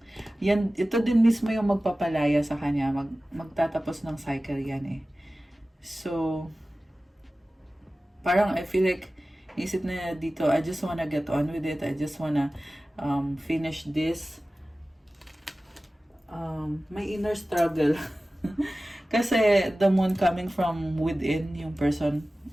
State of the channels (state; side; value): normal; both; correlation 0.96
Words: ito din mismo yung magpapalaya sa kanya. Magtatapos ng cycle yan eh. So, parang I feel like, isip na dito, I just wanna get on with it. I just wanna finish this. May inner struggle. Kasi the moon coming from within, yung person